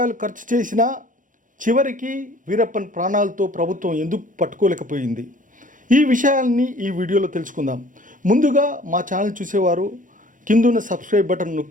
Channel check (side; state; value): left; late; 0.38 ms